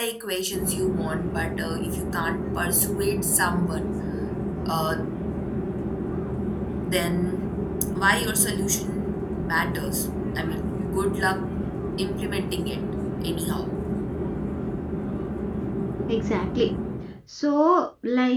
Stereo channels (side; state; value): both; identical; correlation 1.00